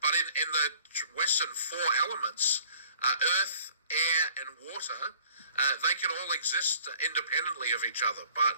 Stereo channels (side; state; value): both; inverted; correlation -0.54